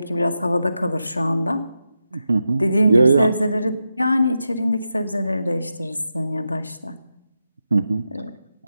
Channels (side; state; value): both; inverted; correlation -0.88